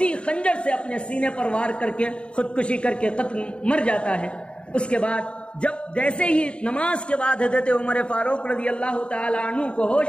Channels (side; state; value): right; late; 0.055 ms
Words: خنجر سے اپنے سینے پر وار کر کے خودکشی کر کے قتل مر جاتا ہے۔ اس کے بعد جب جیسے ہی نماز کے بعد حضرت عمر فاروق رضی اللہ تعالی عنہ کو ہوش